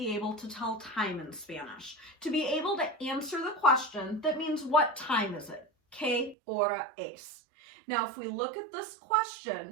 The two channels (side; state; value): left; drops out; at 6.4 s